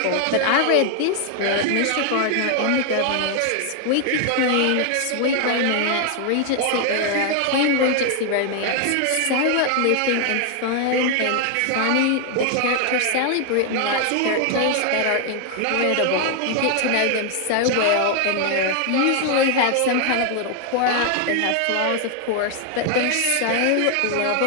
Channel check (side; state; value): both; different; correlation 0.00